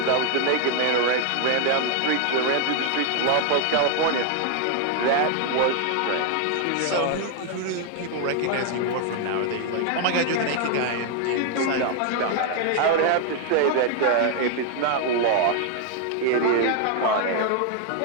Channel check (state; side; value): different; both; correlation 0.00